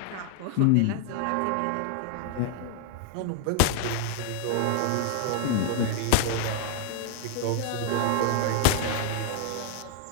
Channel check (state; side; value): different; both; correlation 0.00